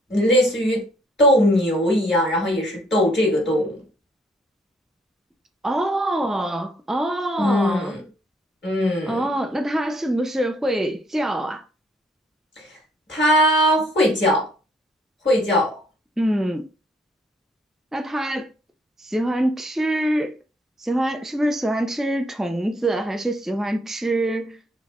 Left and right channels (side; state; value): both; normal; correlation 0.65